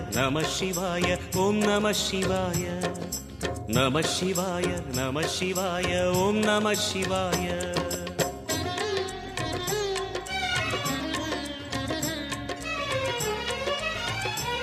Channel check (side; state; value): both; identical; correlation 1.00